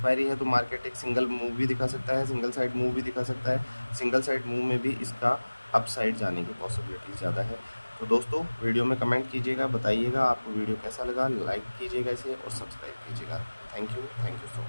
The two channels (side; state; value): both; inverted; correlation -1.00